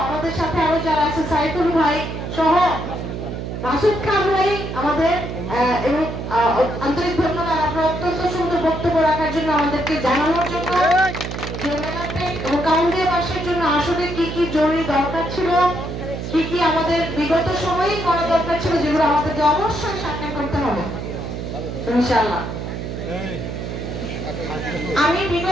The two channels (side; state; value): right; noise; hum, 6 dB below the sound